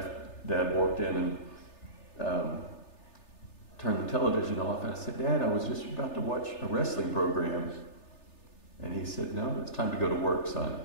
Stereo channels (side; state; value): right; late; 3.3 ms